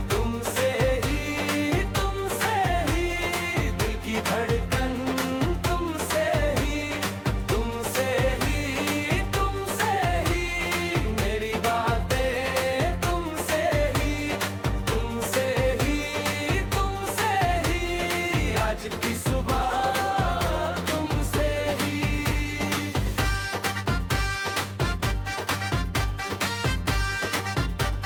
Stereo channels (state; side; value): identical; both; correlation 1.00